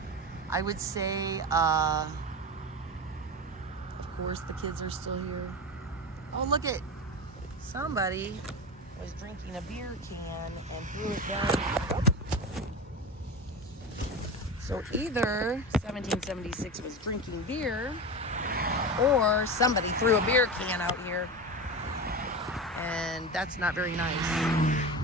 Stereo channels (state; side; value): normal; both; correlation 0.24